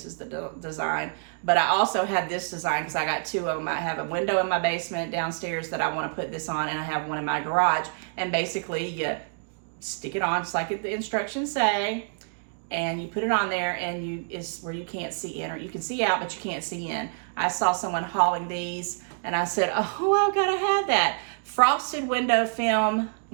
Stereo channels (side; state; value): left; silent; digital silence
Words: is the design. But I also have this design because I got two of them. I have a window in my basement downstairs that I want to put this on, and I have one in my garage. And basically, you stick it on just like the instructions say, and you put it on there, and it's where you can't see in, or you can see out, but you can't see in. I saw someone hauling these, and I said, oh, I've got to have that. Frosted window film,